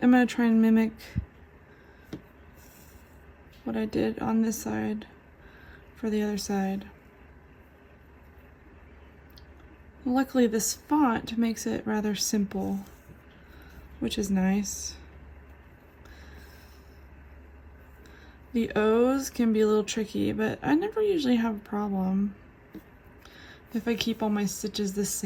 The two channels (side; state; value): both; identical; correlation 1.00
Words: gonna try and mimic what I did on this side for the other side. Luckily, this font makes it rather simple, which is nice. The O's can be a little tricky, but I never usually have a problem if I keep all my stitches the